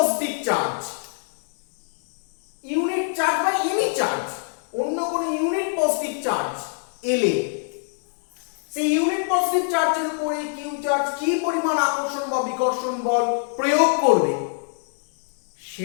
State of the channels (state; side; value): silent; right; 62 dB below the other